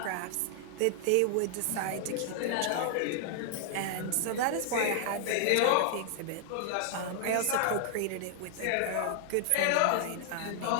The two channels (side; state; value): both; different; correlation -0.01